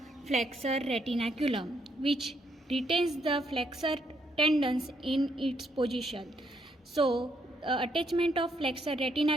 flexor retinaculum, which retains the flexor tendons in its position. So attachment of flexor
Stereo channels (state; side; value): normal; both; correlation 0.73